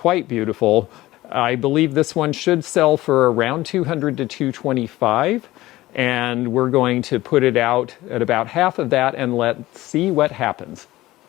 beautiful. I believe this one should sell for around $200 to $225. And we're going to put it out at about half of that and let's see what happens.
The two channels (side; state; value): right; quieter; 17.4 dB